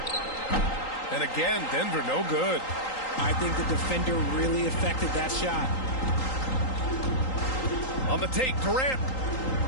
And again, Denver no good. I think the defender really affected that shot. On the take, Durant.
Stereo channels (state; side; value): late; right; 3.8 ms